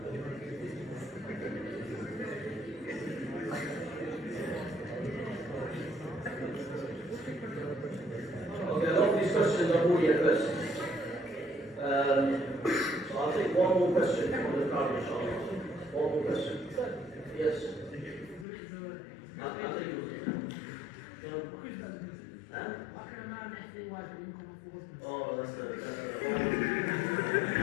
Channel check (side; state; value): right; drops out; at 18.4 s